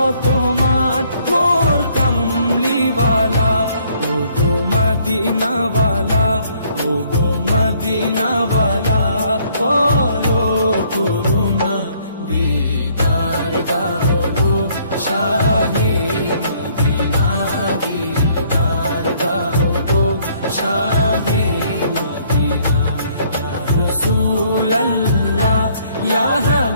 মান মোর কামলিওয়ালা। ও গো মদিনাওয়ালা, ও গো মদিনাওয়ালা, করো করুণা দিদার দাও গো শাহে মদিনা, দিদার দাও গো শাহে মদিনা। ইয়া রাসূলাল্লাহ ইয়া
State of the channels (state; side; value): inverted; both; correlation -0.64